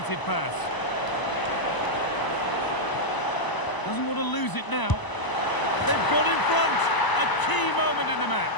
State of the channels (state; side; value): late; right; 1.0 ms